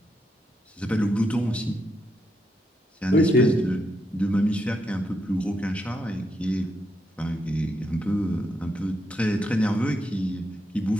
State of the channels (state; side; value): normal; both; correlation 0.81